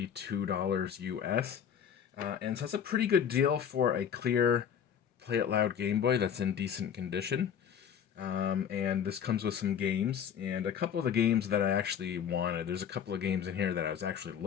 US. And so that's a pretty good deal for a clear Play It Loud Game Boy that's in decent condition. And this comes with some games and a couple of the games that I actually wanted. There's a couple of games in here that I was actually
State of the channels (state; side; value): quieter; right; 8.3 dB